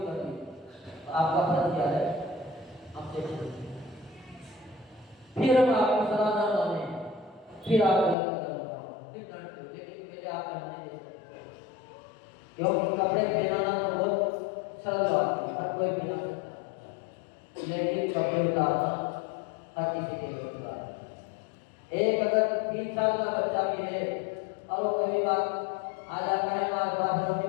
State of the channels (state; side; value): drops out; right; at 8.2 s